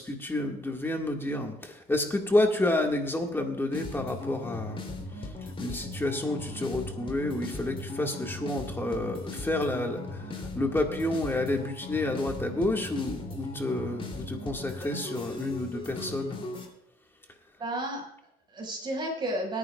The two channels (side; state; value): both; normal; correlation 0.69